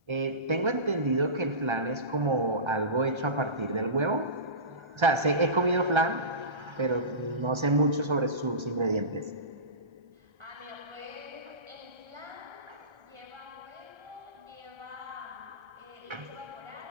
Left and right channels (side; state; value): left; late; 1.3 ms